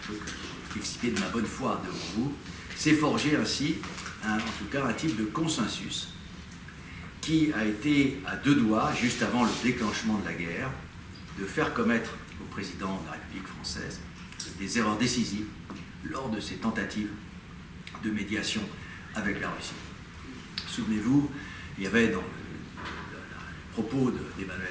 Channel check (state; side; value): identical; both; correlation 1.00